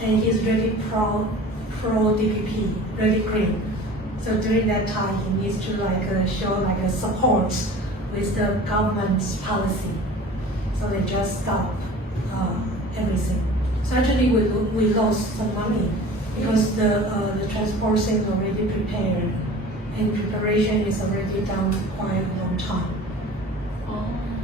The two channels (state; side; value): normal; both; correlation 0.42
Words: and he's really pro DPP, really green. So during that time, he needs to show a support with the government's policy. So they just stop everything. So actually, we lost some money because the transport thing is already prepared, and preparation is already done quite a long time.